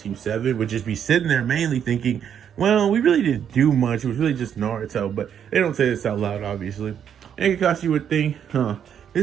7 would just be sitting there mainly thinking, well, we really didn't do much. It was really just Naruto, but they don't say this out loud, obviously. And Kakashi would think,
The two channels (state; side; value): quieter; left; 8.6 dB